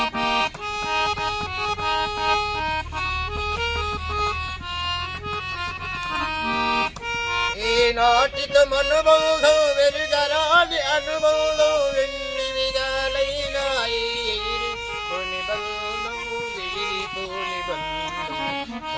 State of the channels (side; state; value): both; identical; correlation 1.00